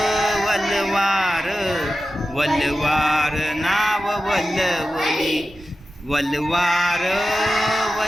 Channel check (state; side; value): normal; both; correlation 0.93